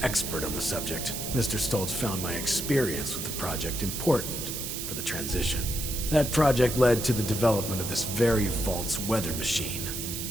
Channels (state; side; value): noise; right; hiss, 5 dB below the sound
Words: expert on the subject, Mr. Stoltz found my experience with the project important for the transition. That project led to the development of this very Vault's weather machine,